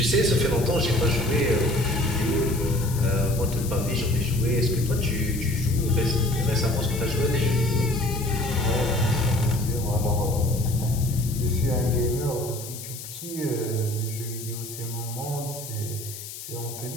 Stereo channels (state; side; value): noise; left; hiss, 11 dB below the sound